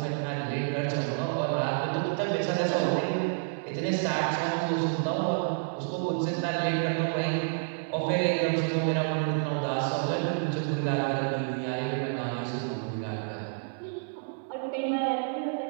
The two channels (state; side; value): silent; left; 58 dB below the other